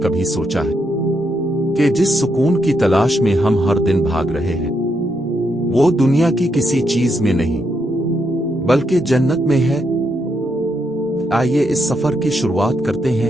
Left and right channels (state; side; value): normal; both; correlation 0.79